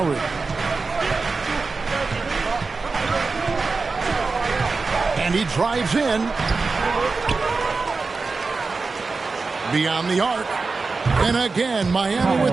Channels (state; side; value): quieter; left; 4.2 dB